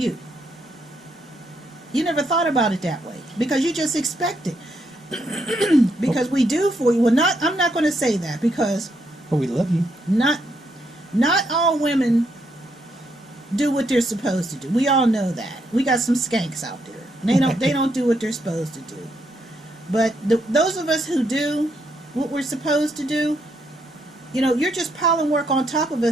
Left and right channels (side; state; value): both; normal; correlation 0.77